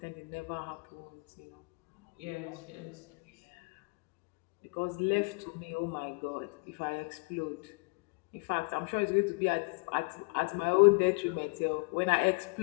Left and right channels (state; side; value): quieter; right; 30.7 dB